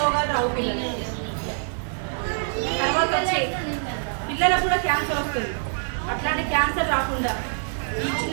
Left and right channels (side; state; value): left; silent; 62 dB below the other